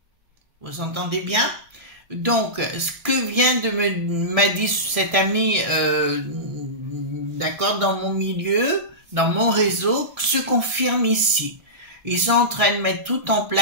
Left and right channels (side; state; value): left; late; 1.6 ms